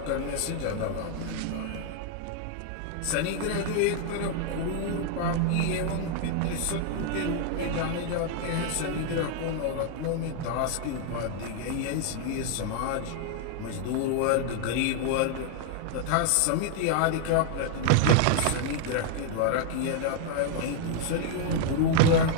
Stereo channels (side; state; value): both; different; correlation 0.00